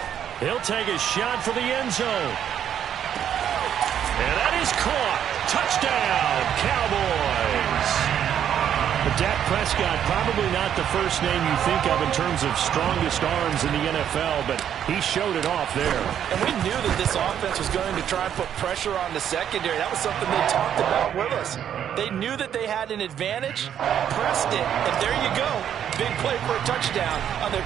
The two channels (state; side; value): quieter; left; 9.5 dB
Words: He'll take a shot for the end zone. And that is caught. Touchdown, Cowboys. But Dak Prescott, probably not the first name you think of in terms of strongest arms in the NFL, but he showed it off there. And we knew that this offense was going to try and put pressure on the secondary. That was something they talked about with us. They knew that they had an advantage, pressed it, and there you go. Big play for a touchdown on their